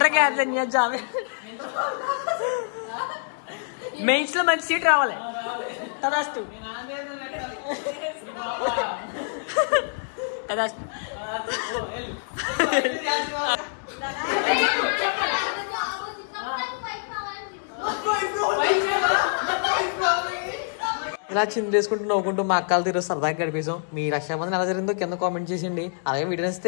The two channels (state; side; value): silent; right; digital silence